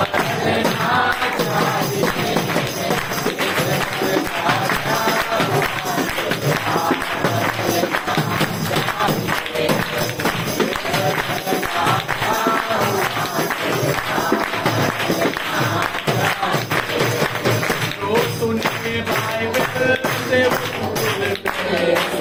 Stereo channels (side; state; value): both; identical; correlation 1.00